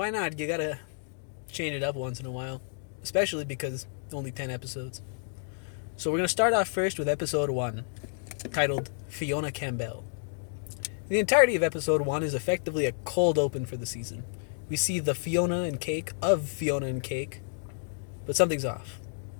not? You gotta change it up once in a while. Especially because only 10 episodes. So we're gonna start off first with episode 1, titled Fionna Campbell. The entirety of episode 1 is effectively a cold open for the season. We see the Fionna and Cake of Fionna and Cake, but something's off.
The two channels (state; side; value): silent; right; digital silence